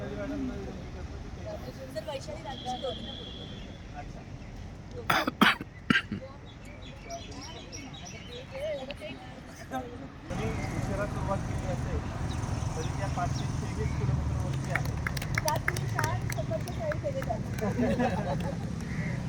मॅडमला विनंती करतो की ते जर वैशाली राजची दोघींना बोलतो. अच्छा तरी उशिरा सुरुवात केली असेल तरी त्या 523 किलोमीटरवरती आहे. त्यात तुम्ही 4 स्वतःच्या शाळेत केले जातात.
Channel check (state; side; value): identical; both; correlation 1.00